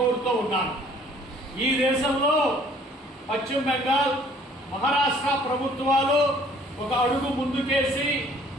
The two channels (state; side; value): normal; both; correlation 0.57